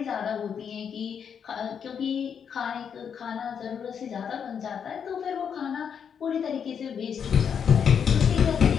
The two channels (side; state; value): right; quieter; 7.4 dB